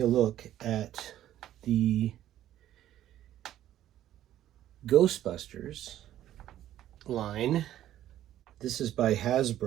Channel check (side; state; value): left; quieter; 12.4 dB